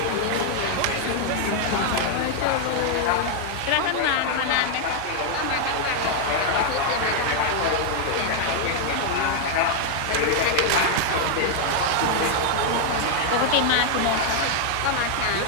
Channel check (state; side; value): different; both; correlation 0.00